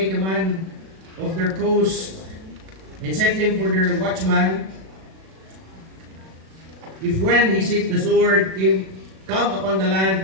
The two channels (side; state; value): left; late; 37 ms